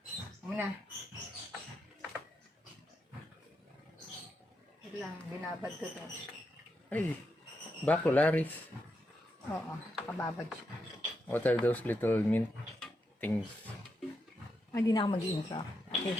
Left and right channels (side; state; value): both; normal; correlation 0.84